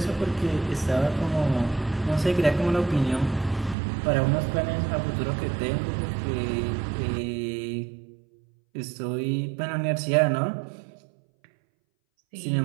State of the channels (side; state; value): left; drops out; at 3.8 s